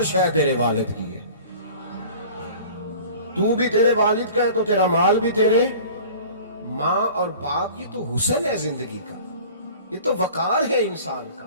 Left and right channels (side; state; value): both; inverted; correlation -0.44